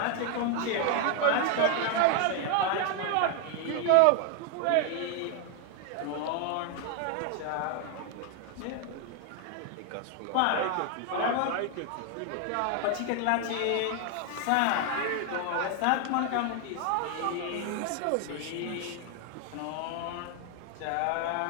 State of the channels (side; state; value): both; different; correlation 0.01